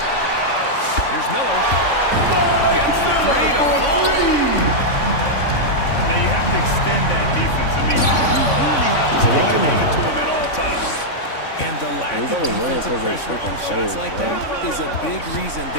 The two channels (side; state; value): right; late; 3.5 ms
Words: Here's Miller. Gets the three to fall. Now you have to extend that defense. I mean, you really have to stay connected to him at all times. And the lack he's of only winning defensive because of pressure on freaking shots players, like bro. that is a big reason